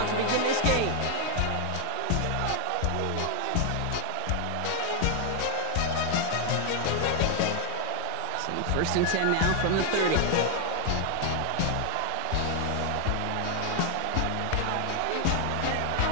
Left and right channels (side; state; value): both; different; correlation 0.00